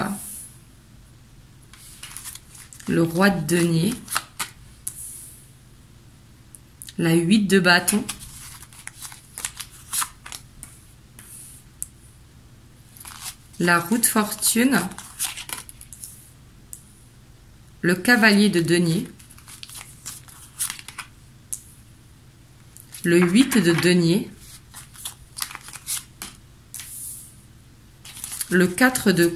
le roi de denier, la 8 de bâton, la roue de fortune, le cavalier de denier, le 8 de denier, le 4 de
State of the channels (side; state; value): both; identical; correlation 1.00